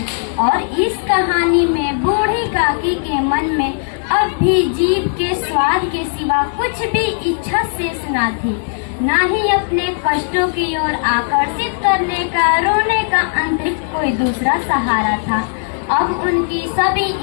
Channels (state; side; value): silent; right; digital silence